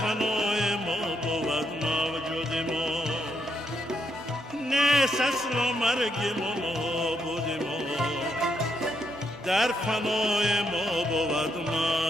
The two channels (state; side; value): normal; both; correlation 0.78